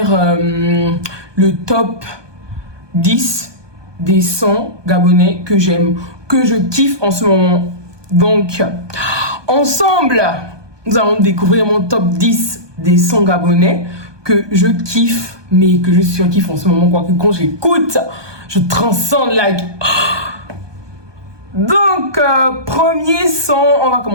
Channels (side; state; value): left; late; 1.2 ms